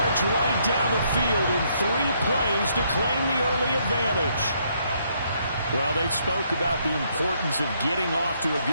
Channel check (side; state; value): both; inverted; correlation -0.72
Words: right down the field in 3 plays to claim the early advantage. Well, they spoke about the importance of getting off to a